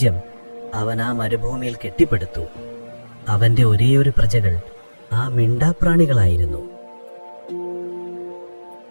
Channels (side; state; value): both; inverted; correlation -1.00